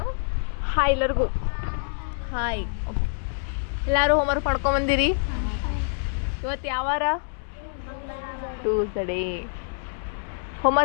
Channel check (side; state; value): right; silent; 61 dB below the other